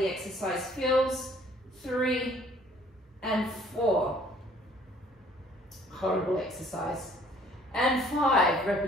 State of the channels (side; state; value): both; normal; correlation 0.58